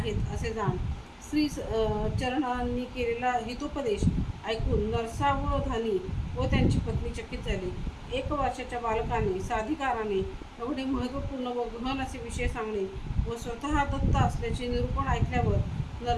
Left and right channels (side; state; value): both; identical; correlation 1.00